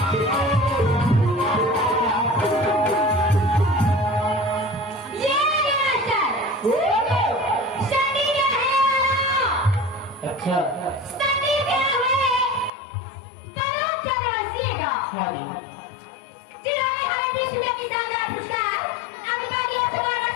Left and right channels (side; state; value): right; drops out; at 12.7 s